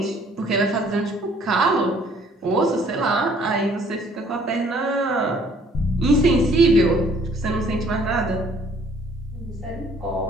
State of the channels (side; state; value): both; normal; correlation 0.59